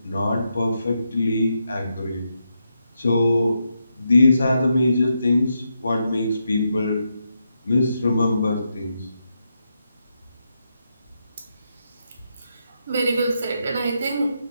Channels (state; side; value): inverted; both; correlation -0.83